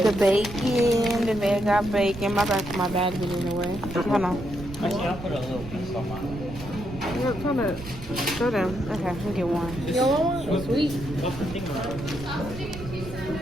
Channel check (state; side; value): noise; right; rumble, 13 dB below the sound